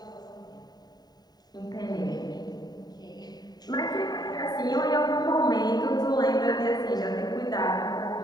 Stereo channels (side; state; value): right; late; 0.20 ms